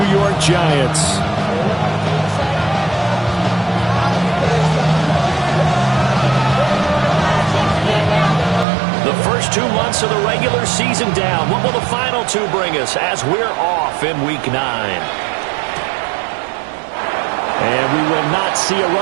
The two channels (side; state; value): left; drops out; at 8.7 s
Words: York Giants. The first 2 months of the regular season down. What will the final 2 bring us as we're off in Week 9? And we will not see a